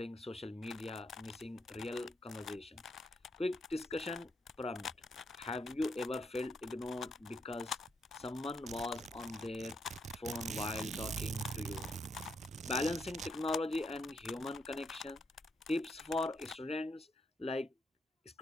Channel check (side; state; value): both; normal; correlation 0.77